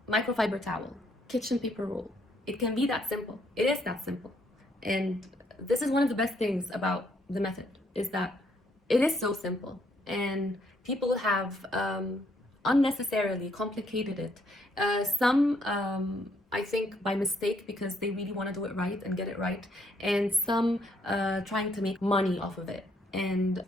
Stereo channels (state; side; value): normal; both; correlation 0.70